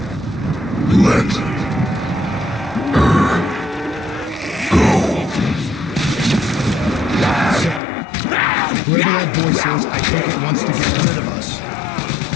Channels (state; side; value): drops out; right; at 7.8 s